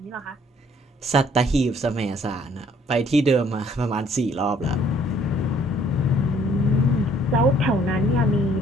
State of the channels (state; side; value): normal; both; correlation 0.61